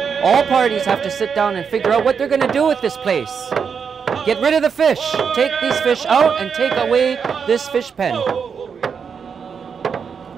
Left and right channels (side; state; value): left; quieter; 6.4 dB